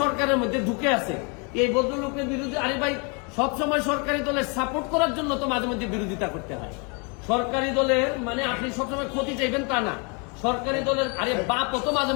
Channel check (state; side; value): quieter; right; 33.5 dB